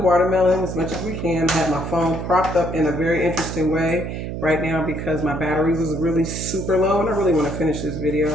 as much as we can. I had my phone propped up in a very interesting way right now because my battery was really super low and I really want to finish this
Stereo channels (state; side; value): noise; right; hum, 5 dB below the sound